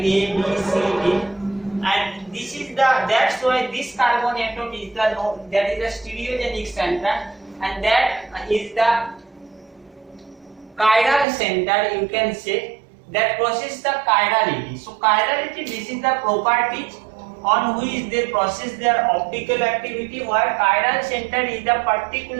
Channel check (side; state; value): left; drops out; at 11.2 s